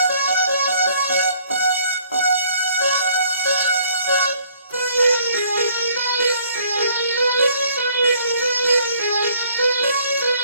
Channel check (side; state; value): both; inverted; correlation -0.61